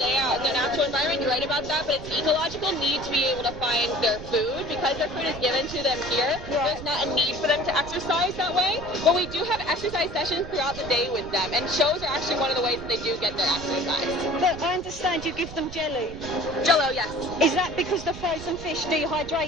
out in their natural environment. You're right about that, but it's an ecological need to be able to find their food. Because their food is given to them here, there's not a need for them to exercise that way. But we do have exercise sessions throughout the day with them, and shows are actually one of the ways that they do get their exercise. But I understand you give them jelly. Jello, yes. Is that because the frozen fish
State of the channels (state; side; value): noise; right; rumble, 13 dB below the sound